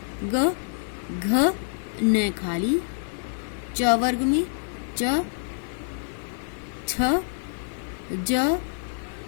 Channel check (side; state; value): right; silent; digital silence